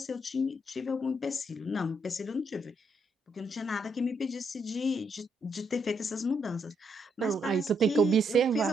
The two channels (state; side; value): normal; both; correlation 0.76